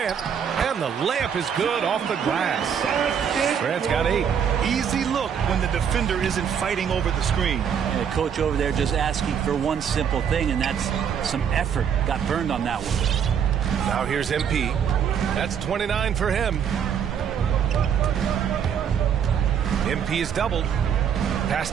and the layup is good off the glass. Grant's got 8. Easy look when the defender isn't fighting over the screen. And the coach over there just asking for one simple thing, and that's some effort. Got burned on that one. Now here's MP. That's 29 for him. MP is doubled. Pass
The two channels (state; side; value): quieter; left; 8.0 dB